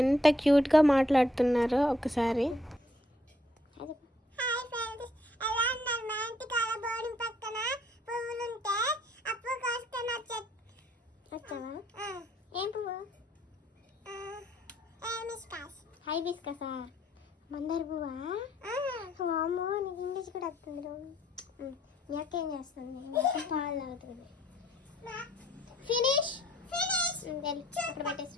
ఎంత క్యూట్గా మాట్లాడుతున్నారో ఒకసారి. ఏం పువ్వు? హైబిస్కసా? మందార పువ్వా? వామ్మో, నీకు ఇంగ్లీష్ కూడా వస్తుంది. మీ అక్క ఏం చేస్తుంది? పాలు తాగుతుంది. ఫినిష్ అక్కడ పెట్టేసి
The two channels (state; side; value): normal; both; correlation 0.67